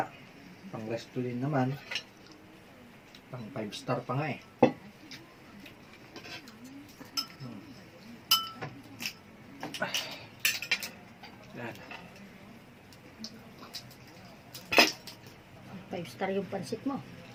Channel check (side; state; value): both; identical; correlation 1.00